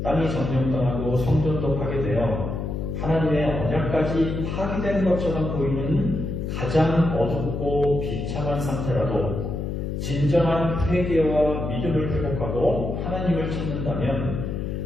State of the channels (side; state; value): left; noise; hum, 3 dB below the sound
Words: 땅이 점령당하고 성전도 파괴되어 하나님의 언약까지 파괴된 것처럼 보이는 가장 어둡고 비참한 상태라도 진정한 회개와 믿음을 회복하고 하나님을 찾는다면